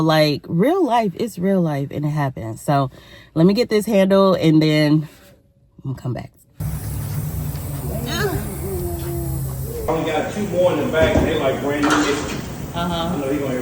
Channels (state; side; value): identical; both; correlation 1.00